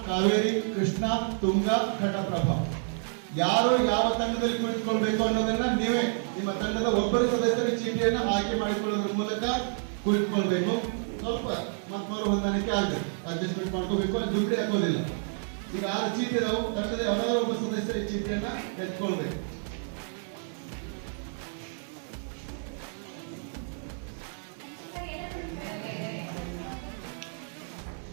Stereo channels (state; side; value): silent; left; 58 dB below the other